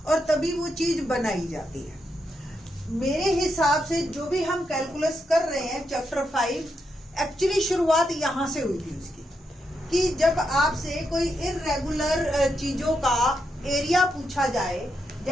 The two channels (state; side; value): normal; both; correlation 0.82